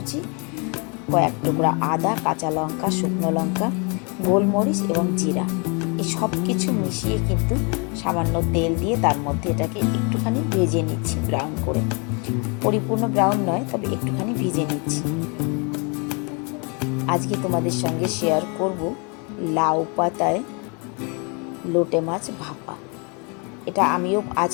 কয়েক টুকরা আদা, কাঁচা লঙ্কা, শুকনো লঙ্কা, গোলমরিচ এবং জিরা। এই সব কিছু মিশিয়ে কিন্তু সামান্য তেল দিয়ে তার মধ্যে এটাকে একটুখানি ভেজে নিচ্ছি, ব্রাউন করে। পরিপূর্ণ ব্রাউন নয়, তবে একটুখানি ভেজে নিচ্ছি। আজকে তোমাদের সঙ্গে শেয়ার করব লাউ পাতায় লোটে মাছ ভাপা। এটা আমিও আজ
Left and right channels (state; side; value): quieter; right; 33.8 dB